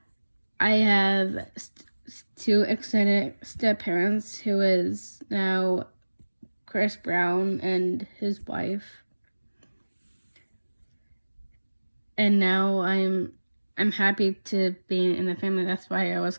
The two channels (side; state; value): both; inverted; correlation -1.00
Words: I have two extended step-parents, who is now Chris Brown and his wife. And now I'm happy to be in the family. That's why I was